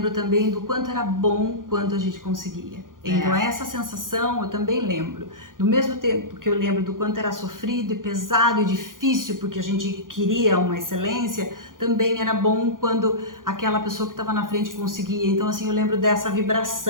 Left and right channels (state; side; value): late; left; 0.90 ms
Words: também do quanto era bom quando a gente conseguia. Então É. essa sensação eu também lembro. Do mesmo tempo que eu lembro do quanto era sofrido e pesado e difícil, porque a gente queria uma excelência, também era bom quando aquela pessoa que estava na frente conseguia. Então assim, eu lembro dessa